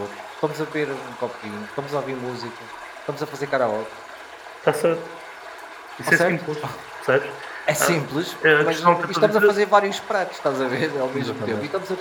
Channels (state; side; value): identical; both; correlation 1.00